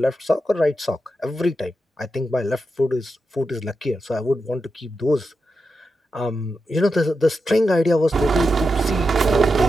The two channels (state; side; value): normal; both; correlation 0.88